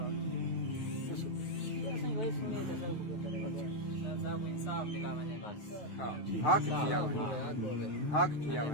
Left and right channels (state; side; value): late; right; 9.3 ms